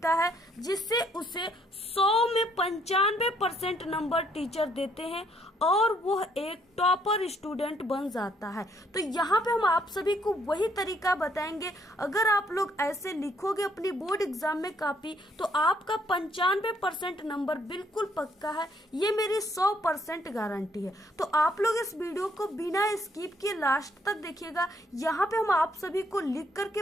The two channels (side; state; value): both; normal; correlation 0.68